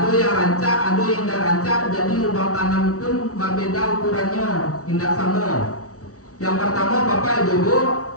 yang rancak, ada yang tidak rancak. Jadi lubang tanam pun berbeda ukurannya, tidak sama. Yang pertama bapak ibu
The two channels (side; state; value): right; late; 0.65 ms